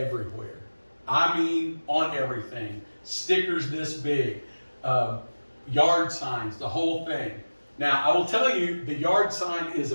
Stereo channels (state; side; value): inverted; both; correlation -1.00